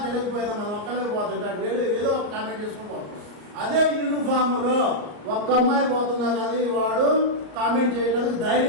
తెలియకపోయినా మనం ఒక్కలే పోతుంటాడు, వేరే ఏదో ఒక కామెంట్ చేసుకుని పోతాం. అదే యూనిఫామ్లో ఒక్క అమ్మాయి పోతున్నా కానీ వాడు కామెంట్ చేయడానికి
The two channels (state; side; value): late; left; 34 ms